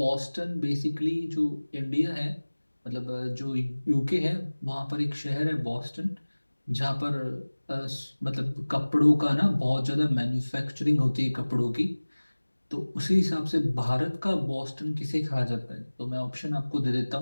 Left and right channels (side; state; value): both; inverted; correlation -1.00